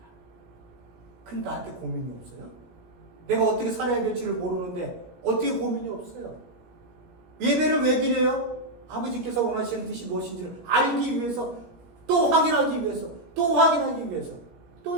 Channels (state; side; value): late; left; 17 ms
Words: 근데 나한테 고민이 없어요? 내가 어떻게 살아야 될지를 모르는데 어떻게 고민이 없어요? 예배를 왜 드려요? 아버지께서 원하시는 뜻이 무엇인지를 알기 위해서, 또 확인하기 위해서,